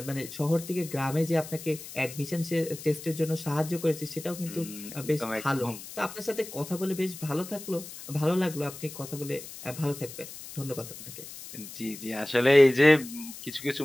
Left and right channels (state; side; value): noise; left; hiss, 13 dB below the sound